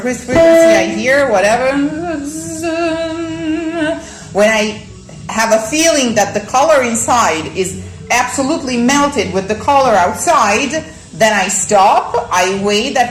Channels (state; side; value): identical; both; correlation 1.00